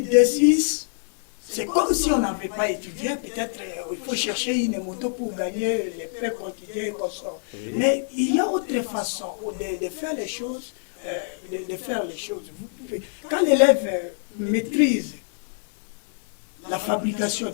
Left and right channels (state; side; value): silent; right; digital silence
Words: D6, c'est comme si on n'avait pas étudié, peut-être il faut chercher une moto pour gagner les pains quotidiens et comme ça. Oui. Mais il y a autre façon de faire les choses, Quand l'élève maîtrise la fabrication des